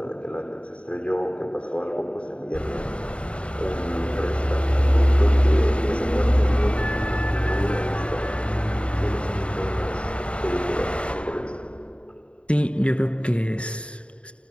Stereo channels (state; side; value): late; right; 0.059 ms